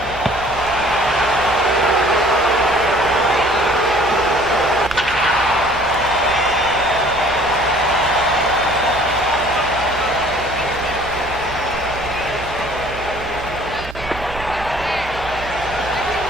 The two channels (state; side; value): normal; both; correlation 0.53